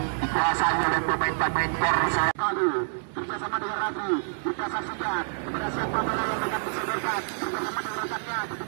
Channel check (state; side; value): silent; left; digital silence